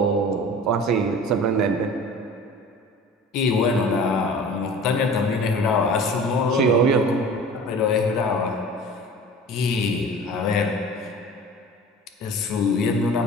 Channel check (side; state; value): both; normal; correlation 0.41